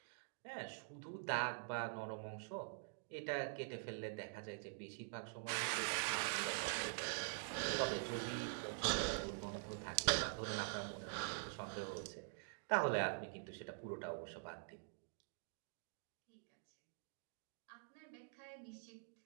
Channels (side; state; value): left; silent; digital silence